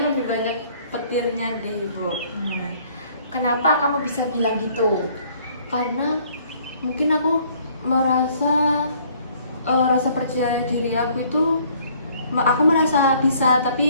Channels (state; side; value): inverted; both; correlation -0.60